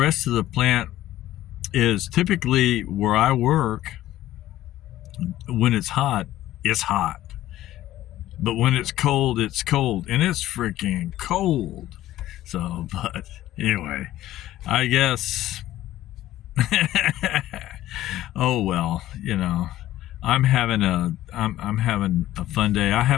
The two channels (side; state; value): right; quieter; 14.3 dB